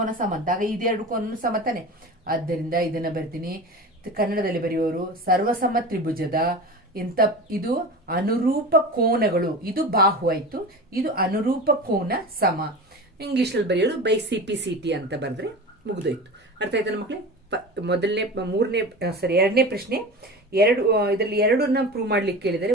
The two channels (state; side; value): normal; both; correlation 0.31